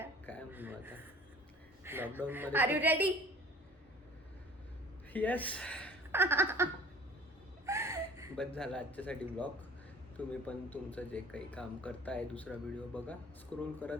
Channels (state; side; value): normal; both; correlation 0.48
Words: काय म्हणू आता. लॉकडाऊन मध्ये. Are you ready? येस. बस झाला आजच्यासाठी व्लॉग. तुम्ही पण तुमचं जे काही काम करताय, दुसरा व्हिडिओ बघा, स्क्रोल